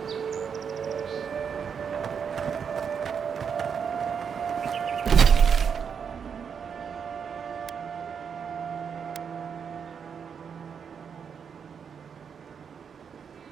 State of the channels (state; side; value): quieter; left; 6.9 dB